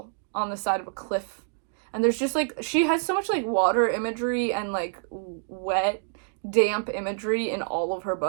on the side of a cliff, and there's just like, she has so much like water imagery and like wet, damp imagery in all of her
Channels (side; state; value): left; silent; digital silence